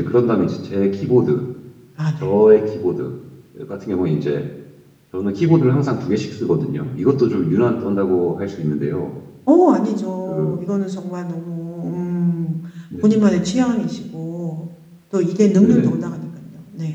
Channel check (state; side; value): identical; both; correlation 1.00